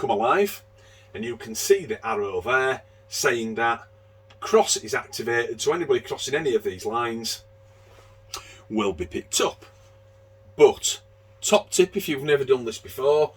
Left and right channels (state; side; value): identical; both; correlation 1.00